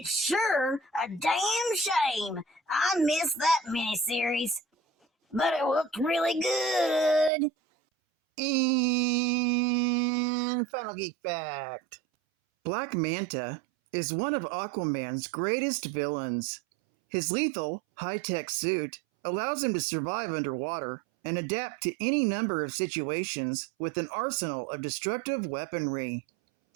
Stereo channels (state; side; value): drops out; left; at 7.3 s